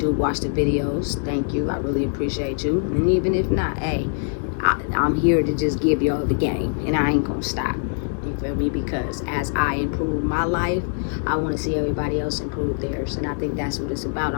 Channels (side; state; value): right; silent; digital silence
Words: watch the videos, thank you. I really appreciate you. And even if not, hey, I'm here to just give y'all the game, and I ain't gonna stop. You feel me? Because as I improve my life, I want to see everybody else improve theirs, and I think that's what it's about.